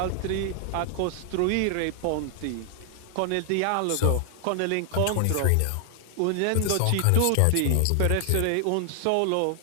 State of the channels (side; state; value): both; different; correlation 0.00